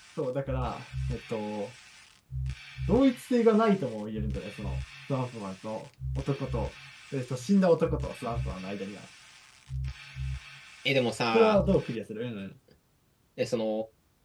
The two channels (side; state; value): both; identical; correlation 1.00